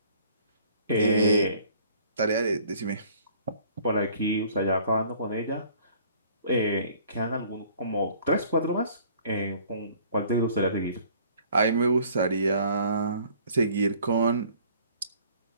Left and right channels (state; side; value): inverted; both; correlation -0.55